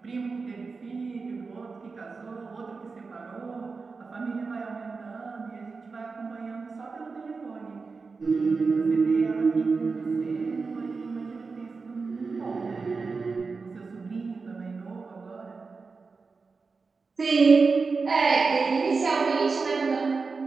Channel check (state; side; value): quieter; left; 4.5 dB